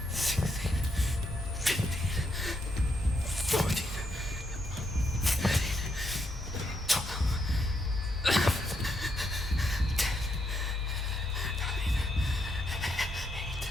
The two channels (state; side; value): normal; both; correlation 0.78